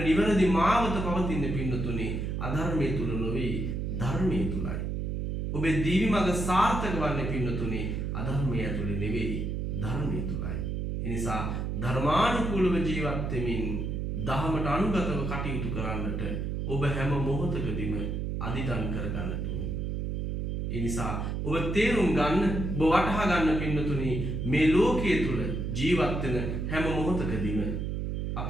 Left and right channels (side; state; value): right; noise; hum, 2 dB below the sound